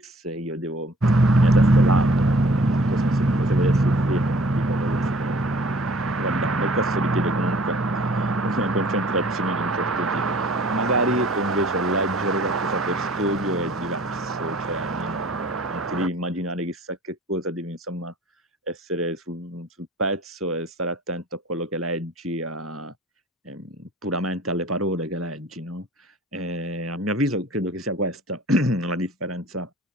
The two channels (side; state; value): both; normal; correlation 0.51